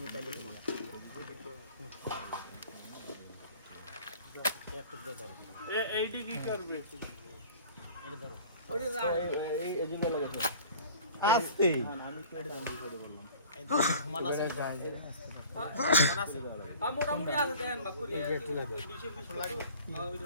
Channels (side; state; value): both; inverted; correlation -0.45